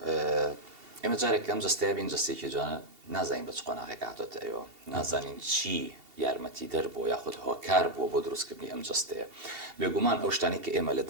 ئێمە جارێک ئەم جستەیە بین جستێکی جوانە نازانین بە چ قۆناغێک هاتۆتە ئێوە نازانین چی یارمەتی دەربۆ یاخود هۆکار بووە بۆ دروستکردنی ئەم جستەیە بێگومان ئەو شتانی کە ئێمە لە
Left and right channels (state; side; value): late; left; 2.7 ms